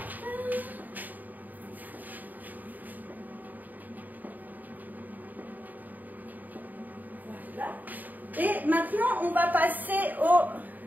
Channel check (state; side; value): late; left; 0.084 ms